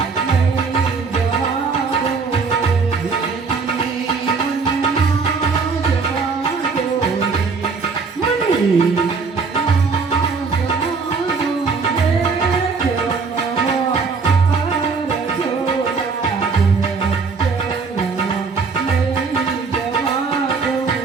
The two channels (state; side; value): quieter; left; 4.8 dB